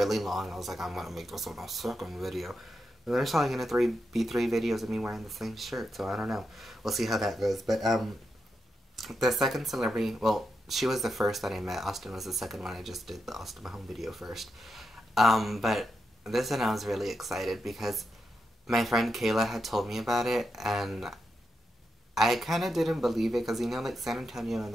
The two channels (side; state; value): both; normal; correlation 0.86